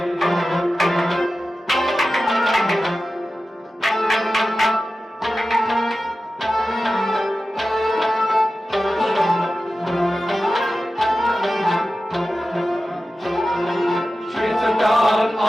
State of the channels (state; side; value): normal; both; correlation 0.94